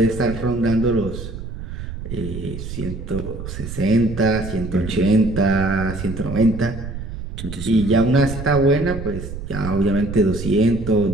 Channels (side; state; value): right; noise; rumble, 8 dB below the sound